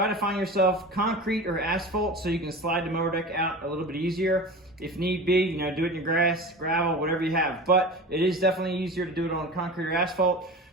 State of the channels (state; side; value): normal; both; correlation 0.33